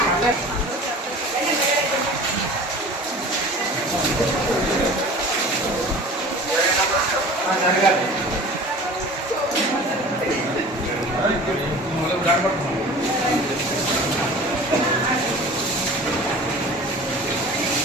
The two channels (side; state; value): both; normal; correlation 0.41